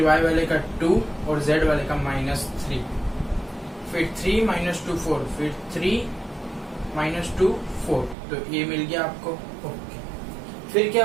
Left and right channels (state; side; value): drops out; left; at 8.2 s